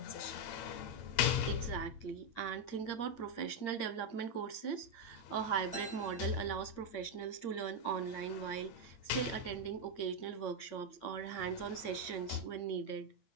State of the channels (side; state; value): right; late; 8.8 ms